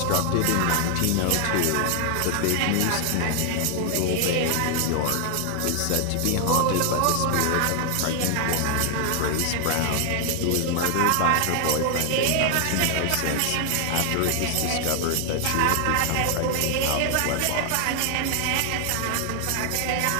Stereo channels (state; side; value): different; both; correlation 0.00